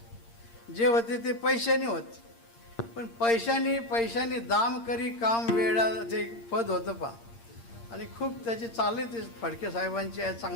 जे होते ते पैशाने होते. पण पैशाने दाम करी काम वेळा ते पद होतं पा, आणि खूप त्याची चालले ते फडके साहेबांची आहे,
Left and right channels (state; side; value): late; right; 8.7 ms